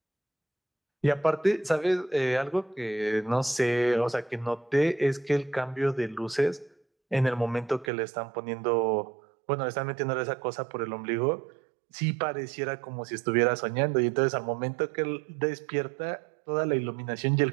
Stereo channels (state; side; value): drops out; left; at 7.9 s